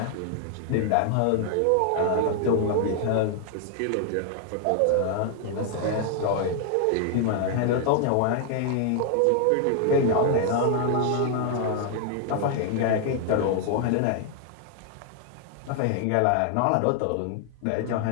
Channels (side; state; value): both; different; correlation 0.00